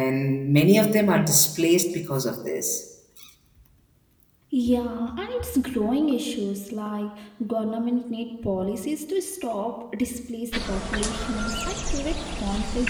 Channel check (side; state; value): both; identical; correlation 1.00